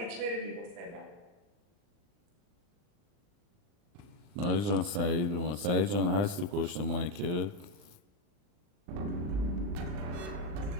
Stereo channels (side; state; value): left; late; 39 ms